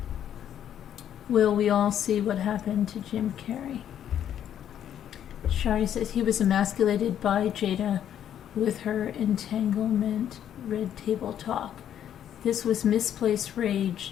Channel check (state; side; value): quieter; right; 10.0 dB